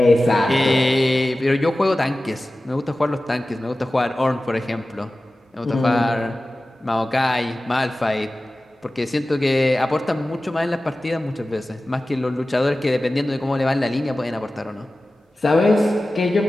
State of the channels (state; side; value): normal; both; correlation 0.96